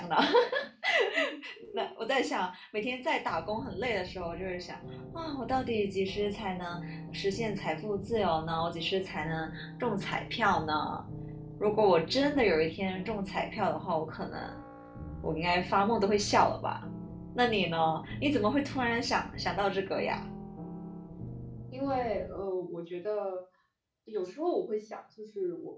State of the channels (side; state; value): both; identical; correlation 1.00